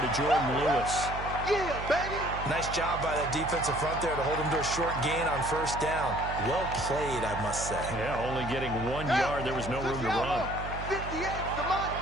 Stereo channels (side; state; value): right; noise; hum, 8 dB below the sound